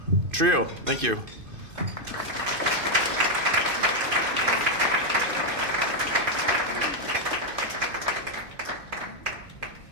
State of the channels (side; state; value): left; late; 2.5 ms